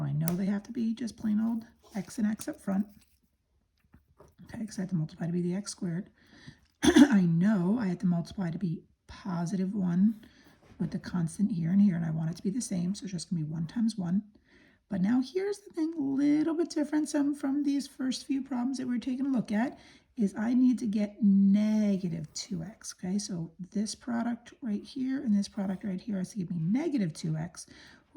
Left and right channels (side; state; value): both; identical; correlation 1.00